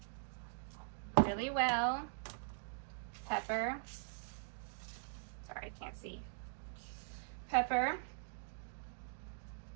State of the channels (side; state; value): left; silent; digital silence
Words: really well, pepper, sorry, I can't see, pepper,